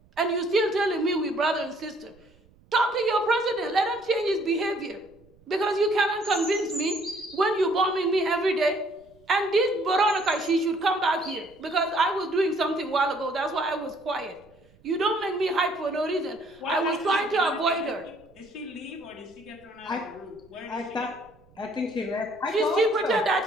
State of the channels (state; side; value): noise; right; rumble, 29 dB below the sound